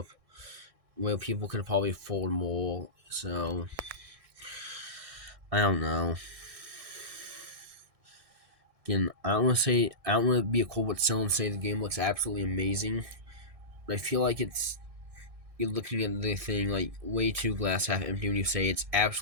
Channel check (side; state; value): left; late; 1.6 ms